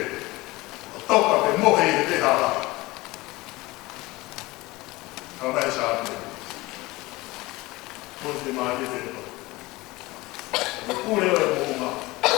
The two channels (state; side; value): quieter; right; 21.0 dB